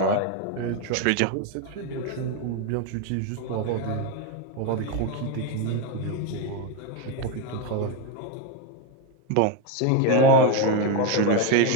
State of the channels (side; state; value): both; different; correlation 0.03